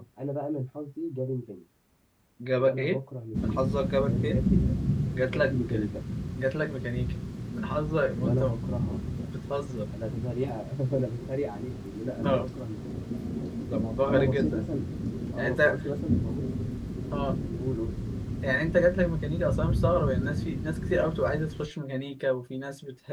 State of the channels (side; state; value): both; identical; correlation 1.00